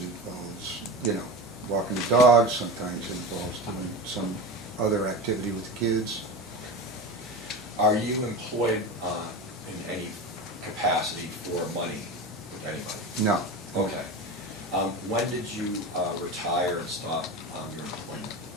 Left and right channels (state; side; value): normal; both; correlation 0.26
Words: you know, walking the dogs, sometimes it involves doing some other activity with the kids. Are you employed in any capacity for money with anybody? No. Okay. When did you retire and stop your employment?